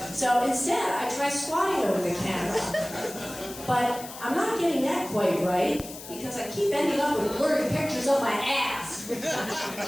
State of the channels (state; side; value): noise; left; hiss, 13 dB below the sound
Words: So instead, I try squatting over the camera. But I'm not getting that quite right because I keep ending up with blurry pictures of my ass.